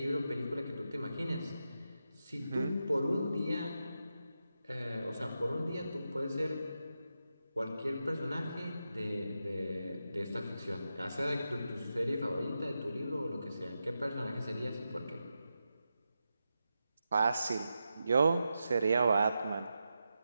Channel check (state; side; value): inverted; both; correlation -0.88